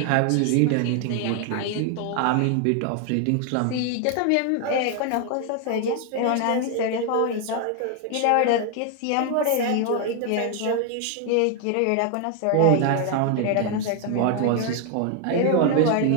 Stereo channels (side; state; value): both; different; correlation 0.00